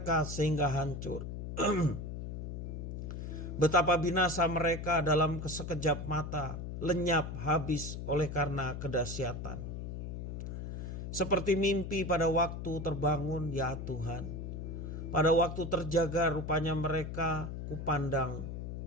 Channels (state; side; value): noise; left; hum, 6 dB below the sound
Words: sehingga hancur. Betapa binasa mereka dalam sekejap mata, lenyap habis oleh karena kedahsyatan. Seperti mimpi pada waktu terbangun ya Tuhan. Pada waktu terjaga rupanya mereka